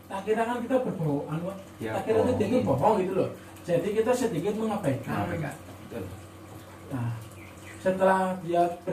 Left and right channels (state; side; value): identical; both; correlation 1.00